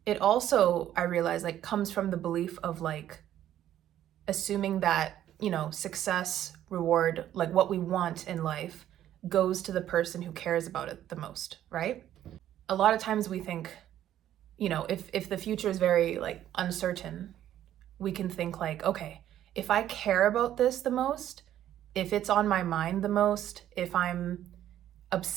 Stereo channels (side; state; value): left; quieter; 11.8 dB